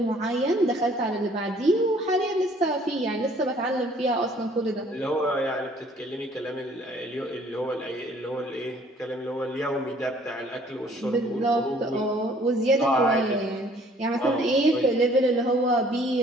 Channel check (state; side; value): normal; both; correlation 0.58